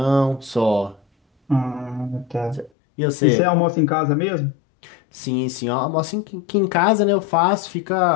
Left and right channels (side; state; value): right; drops out; at 2.7 s